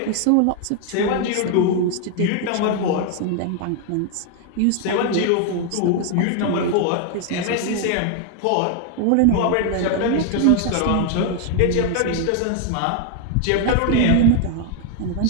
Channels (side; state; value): both; different; correlation 0.00